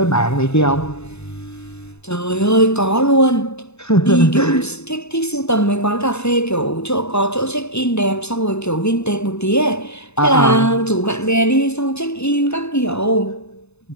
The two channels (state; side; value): late; right; 0.80 ms